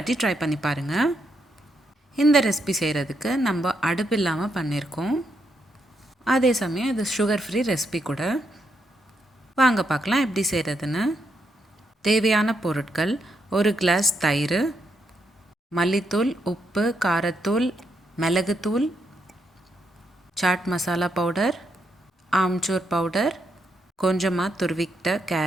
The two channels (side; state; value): both; normal; correlation 0.79